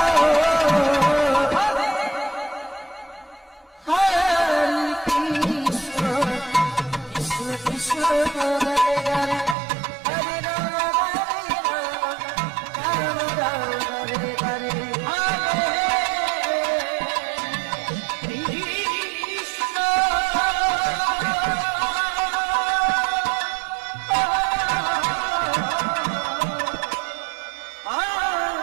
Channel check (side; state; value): left; drops out; at 9.6 s